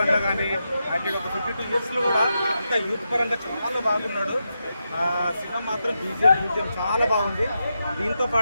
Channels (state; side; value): inverted; both; correlation -0.87